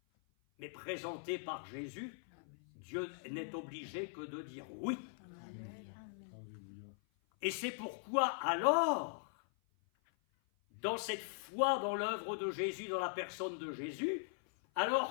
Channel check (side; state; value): right; silent; 51 dB below the other